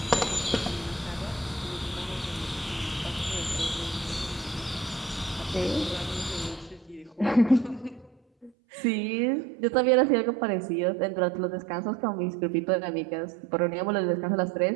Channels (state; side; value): drops out; left; at 8.5 s